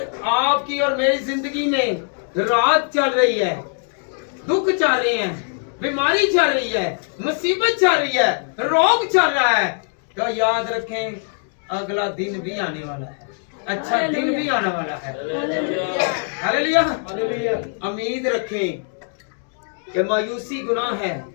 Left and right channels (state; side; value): silent; right; 56 dB below the other